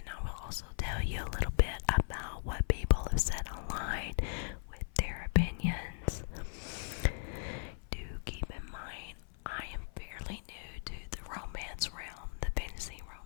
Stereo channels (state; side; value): silent; right; 53 dB below the other